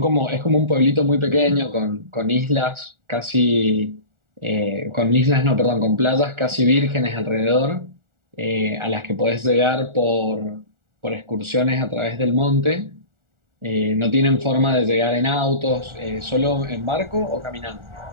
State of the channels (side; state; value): left; late; 1.4 ms